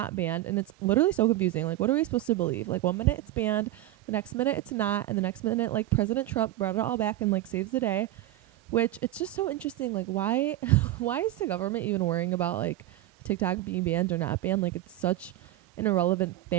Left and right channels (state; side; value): quieter; left; 15.2 dB